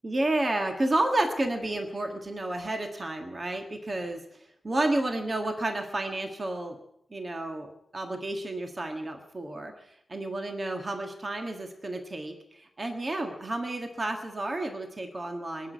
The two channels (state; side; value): normal; both; correlation 0.95